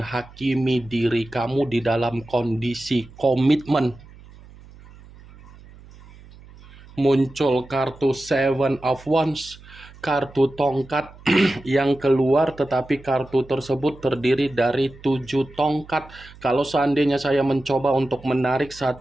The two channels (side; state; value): right; noise; hum, 21 dB below the sound